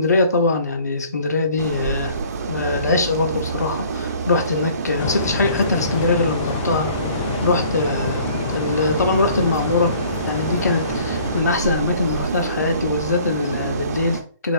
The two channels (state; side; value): inverted; both; correlation -0.54